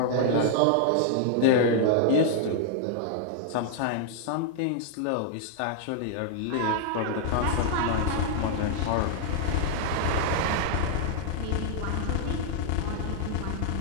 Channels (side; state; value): both; different; correlation -0.01